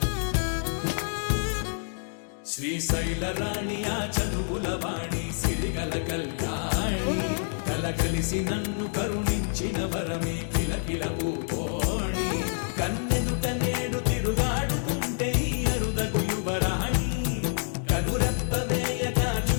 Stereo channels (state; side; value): silent; right; digital silence